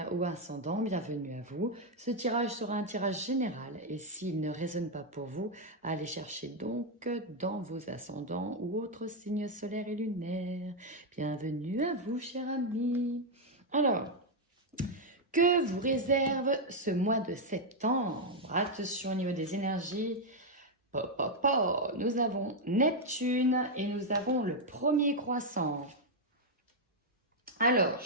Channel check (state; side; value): normal; both; correlation 0.00